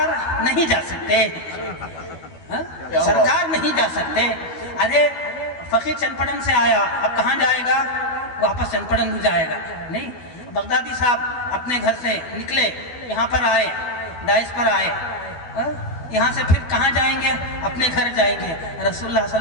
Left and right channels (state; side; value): late; right; 12 ms